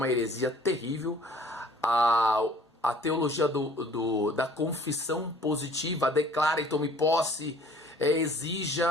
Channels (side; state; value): both; normal; correlation 0.54